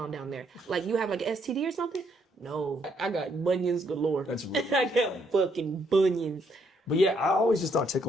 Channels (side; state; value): both; normal; correlation 0.72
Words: down there? Like, you have like an STD or something? No, I got bunions galore. That's really I got fucking bunions. But yeah, I always just thought